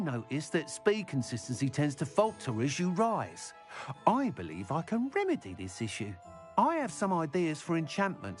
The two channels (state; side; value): identical; both; correlation 1.00